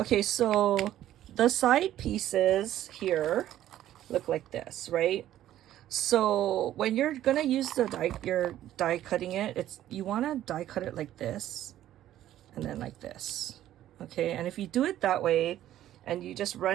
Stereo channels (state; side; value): quieter; left; 12.7 dB